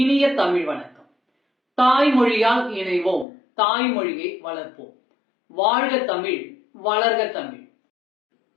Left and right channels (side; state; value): right; drops out; at 3.2 s